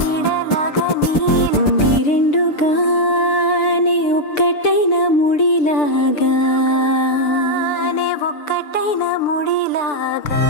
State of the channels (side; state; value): right; late; 6.8 ms